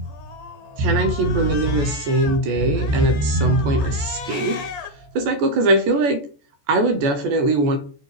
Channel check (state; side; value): late; left; 14 ms